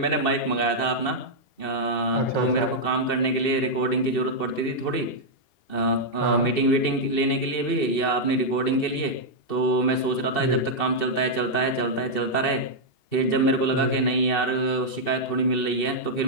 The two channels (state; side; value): late; right; 2.7 ms